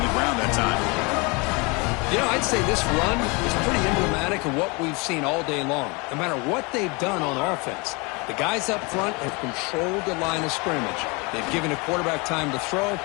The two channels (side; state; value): right; quieter; 28.7 dB